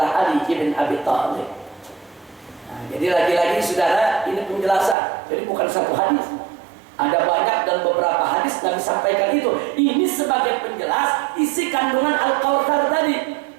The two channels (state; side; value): drops out; left; at 5.0 s